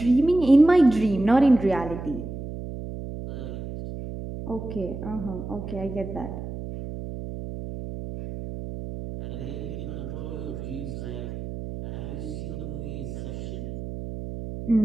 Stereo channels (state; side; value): noise; right; hum, 8 dB below the sound